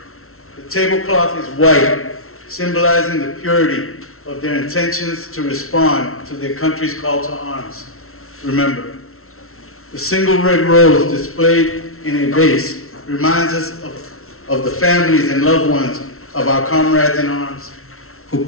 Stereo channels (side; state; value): right; late; 0.62 ms